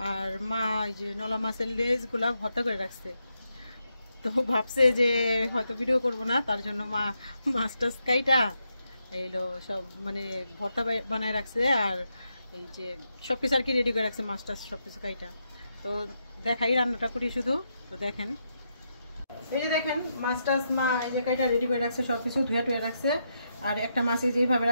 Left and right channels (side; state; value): both; inverted; correlation -0.83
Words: আর মা এই যে নলা মাছের লেজগুলা ভর্তা করে রাখছে, তো ভাবছে যে হয়তো ভিডিও করব না, তার জন্য মা মাছ টাছ কাইটা এইলো সব মানে ভর্তা বানায় রাখছে। আর এই যে সব কিছু আর কি রেডি করে রাখছে, মাছ টাছ সব কিছু কাইটা। তো দেখাই রান্নাটা করি শুধু, তো দেখেন। এই যে দেখেন মাছ টাছ মা এই যে কাইটা রেডি করে রাখছে, সব কিছু ধুয়ে টুয়ে রাখছে। আর একটা মাছ এই যেভাবে